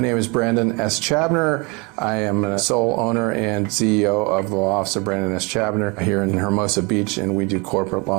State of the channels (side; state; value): left; quieter; 29.0 dB